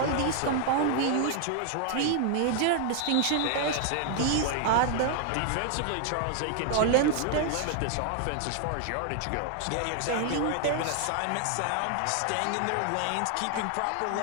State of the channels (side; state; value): both; different; correlation 0.00